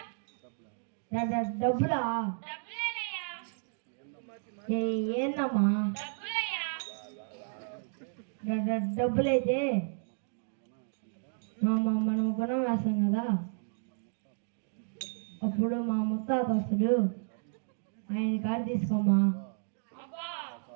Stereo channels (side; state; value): left; silent; 56 dB below the other